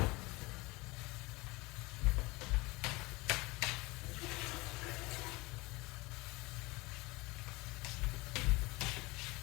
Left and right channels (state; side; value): quieter; right; 23.6 dB